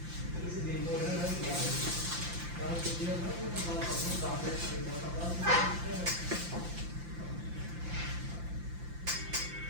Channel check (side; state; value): left; late; 5.8 ms